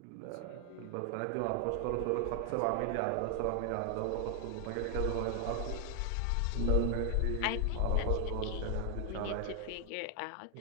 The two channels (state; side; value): different; both; correlation 0.00